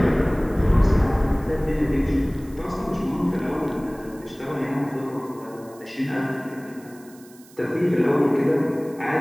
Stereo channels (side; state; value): right; noise; hiss, 25 dB below the sound